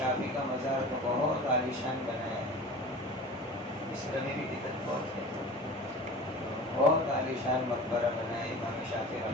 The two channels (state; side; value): normal; both; correlation 0.37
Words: کا مزار تو بہت عالیشان بنایا ہے، مصر میں بھی بدعت بہت ہے، بہت عالیشان مقبرہ بنا ہے امام شافعی